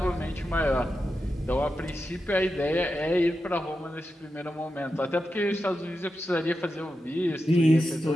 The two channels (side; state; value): both; normal; correlation 0.89